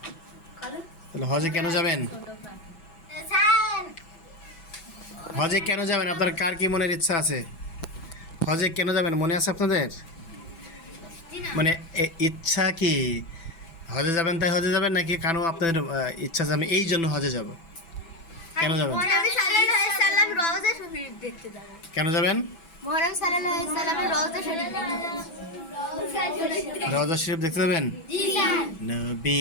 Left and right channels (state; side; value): late; right; 6.0 ms